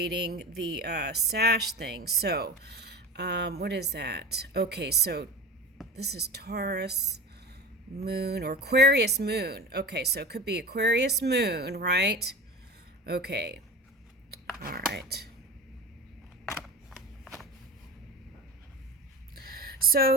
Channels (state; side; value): normal; both; correlation 0.31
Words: the sash thing. So, what is that? Okay, so this is Taurus moon or Aquarius moon. Okay, so it could be Aquarius moon, right? Okay, all right.